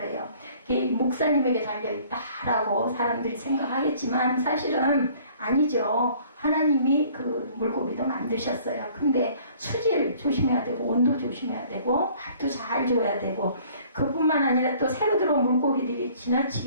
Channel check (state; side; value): inverted; both; correlation -0.55